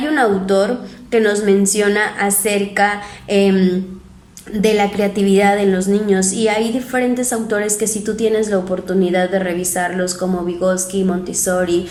un autor que nos menciona acerca de la creatividad en los niños, y hay diferentes autores que si tú tienes la oportunidad de revisarlos, como Vygotsky, Montessori,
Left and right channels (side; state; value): both; identical; correlation 1.00